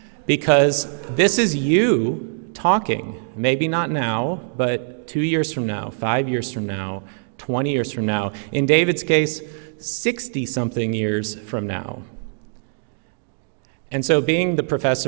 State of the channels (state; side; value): silent; left; digital silence